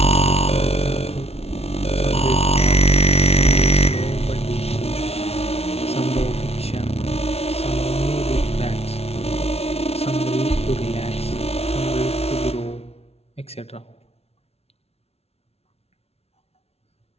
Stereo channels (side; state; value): right; late; 0.30 ms